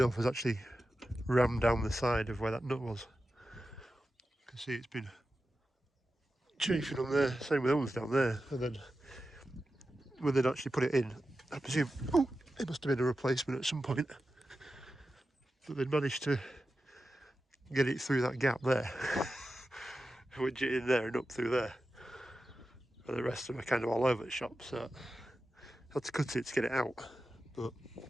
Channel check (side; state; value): both; normal; correlation 0.92